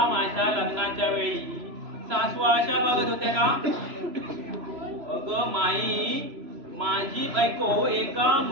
माझ्या लग्नाच्या वेळी सासू अशा बघत होत्या का? अगं माई, माझी बायको एका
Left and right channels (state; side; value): late; left; 3.0 ms